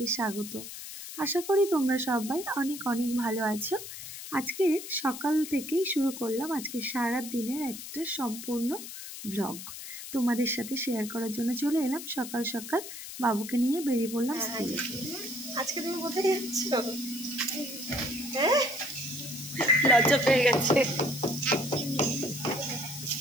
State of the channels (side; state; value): left; noise; hiss, 10 dB below the sound